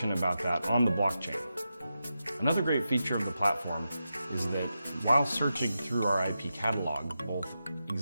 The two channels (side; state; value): both; inverted; correlation -0.89